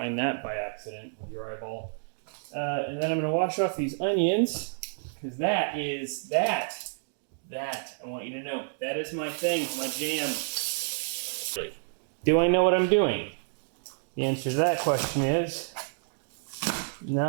that by accident with your eyeball. And then I'm gonna wash off these onions because that I want you to know, that is my thing, my jam. Do I know what I'm doing? The answer to that question is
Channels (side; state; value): left; silent; digital silence